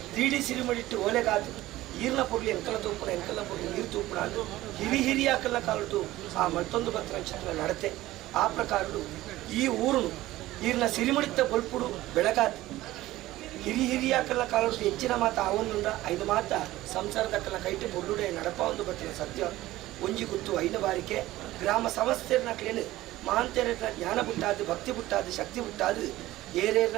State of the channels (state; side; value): quieter; left; 16.5 dB